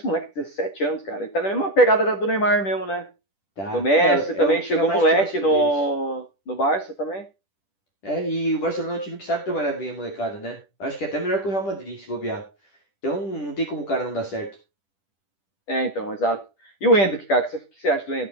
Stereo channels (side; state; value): right; late; 10 ms